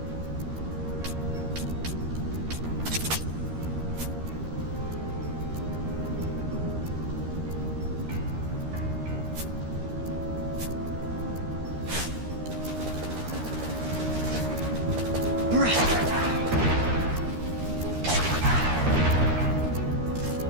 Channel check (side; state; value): left; late; 13 ms